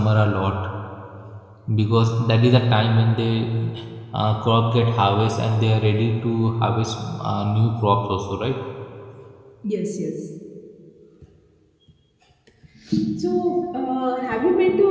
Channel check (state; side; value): identical; both; correlation 1.00